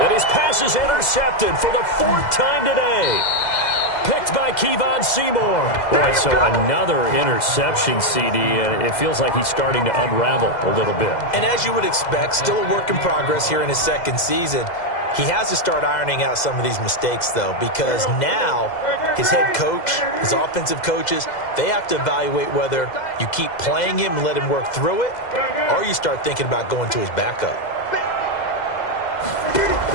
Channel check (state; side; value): late; right; 2.0 ms